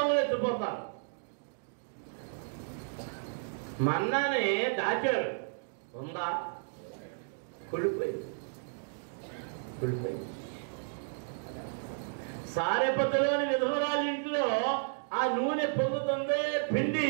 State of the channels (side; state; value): left; silent; digital silence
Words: ఎత్తిపోతారు. మన్నానే దాచారు, ఉందా? కుళ్ళిపోయింది. సారెపతలోని విధవరాలి ఇంట్లో ఆ నూనె పొంగుతుంది, పిండి